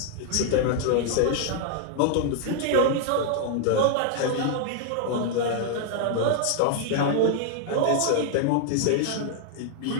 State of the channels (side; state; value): both; different; correlation 0.00